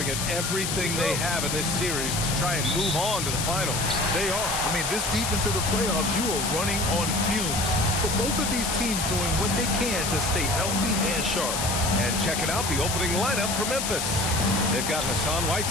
it everything they have in this series to try and move on to the finals. They are. I mean, this deep into the playoffs, you are running on fumes. But both of these teams doing what they can to stay healthy and sharp. And checking out the opening lineup for Memphis. They've got Hassan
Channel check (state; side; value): noise; left; hiss, 2 dB below the sound